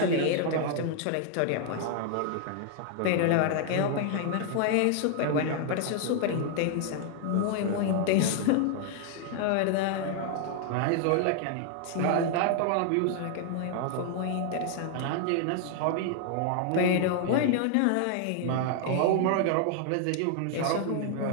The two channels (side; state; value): both; different; correlation 0.00